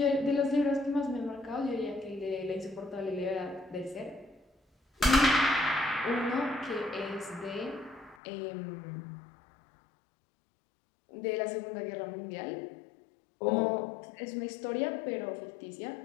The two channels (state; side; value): drops out; right; at 8.2 s